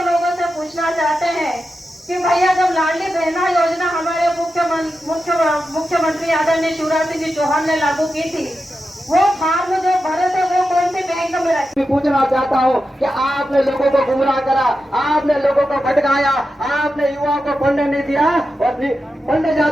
लोगों से पूछना चाहते हैं कि भैया जब लाडली बहना योजना हमारे मुख्यमंत्री आदरणीय शिवराज सिंह चौहान ने लागू की थी, वो फार्म जो भरे थे वो कौन सी बैंक में रखे? पूछना चाहता हूँ कि आपने लोगों को गुमराह करा, आपने लोगों को भटकाया, आपने युवाओं को पढ़ने नहीं दिया, और पढ़ने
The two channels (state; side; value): normal; both; correlation 0.90